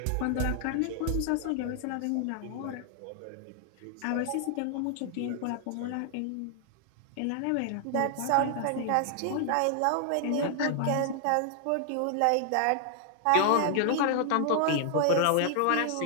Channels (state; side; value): different; both; correlation 0.00